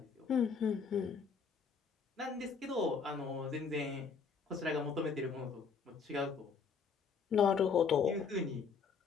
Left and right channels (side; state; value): right; quieter; 5.6 dB